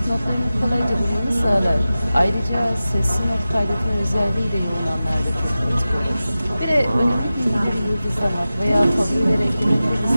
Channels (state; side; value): inverted; both; correlation -0.95